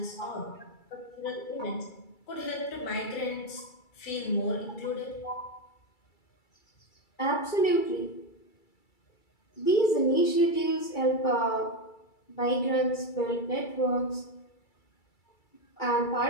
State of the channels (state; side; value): late; right; 2.3 ms